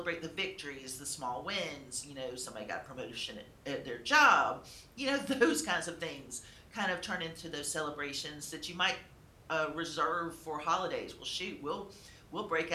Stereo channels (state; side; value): identical; both; correlation 1.00